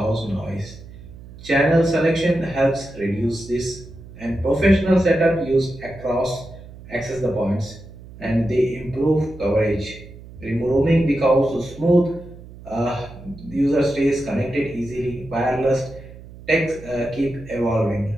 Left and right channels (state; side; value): noise; right; hum, 17 dB below the sound